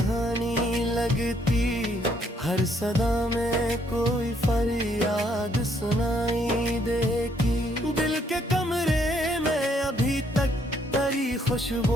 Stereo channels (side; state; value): both; normal; correlation 0.69